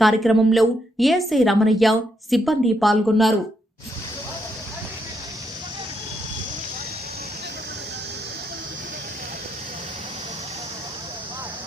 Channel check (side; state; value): both; normal; correlation 0.78